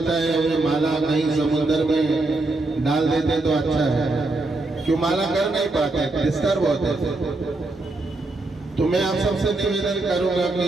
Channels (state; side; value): quieter; left; 3.0 dB